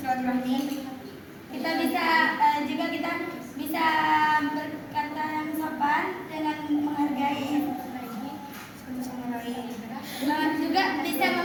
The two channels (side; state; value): both; identical; correlation 1.00